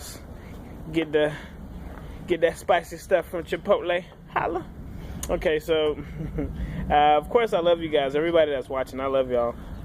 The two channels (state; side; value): identical; both; correlation 1.00